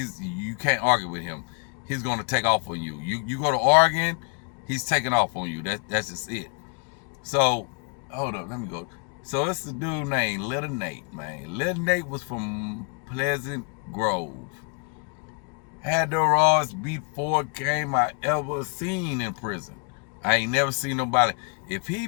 can't argue with him. He's gonna take off on you. You go to arguing, he's taking off on you. That's just it. So, hold up, let me go. So it's the dude named Little Nate, man. Little Nate was from Pleasant Grove. Had the rawest beat for game I ever seen in prison. I ain't never seen nobody. If he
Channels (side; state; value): right; quieter; 38.5 dB